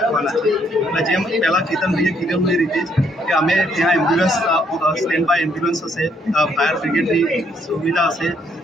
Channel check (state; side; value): normal; both; correlation 0.70